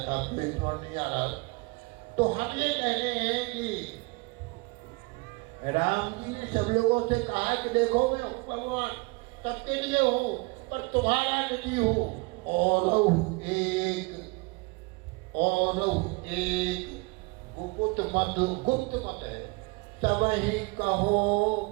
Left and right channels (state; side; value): quieter; left; 27.1 dB